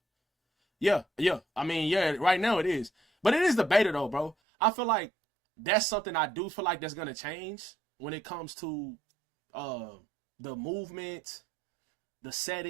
Yeah. I mean, yeah, right now it is. But it is the beta, though, bro. I feel like that's something I do feel like that's going to change when it comes to the movement, the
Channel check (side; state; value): left; drops out; at 4.4 s